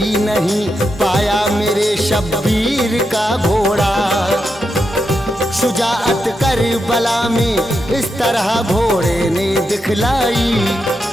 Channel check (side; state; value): both; normal; correlation 0.85